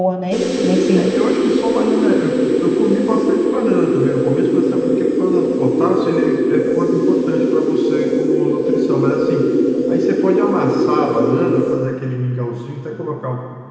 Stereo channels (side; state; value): both; identical; correlation 1.00